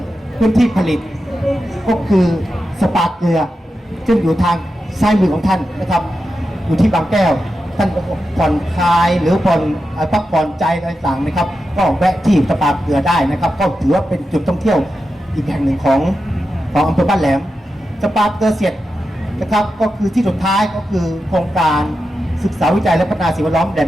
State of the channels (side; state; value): both; normal; correlation 0.90